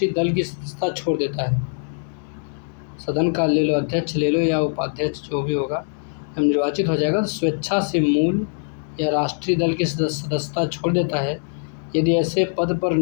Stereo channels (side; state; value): right; silent; 64 dB below the other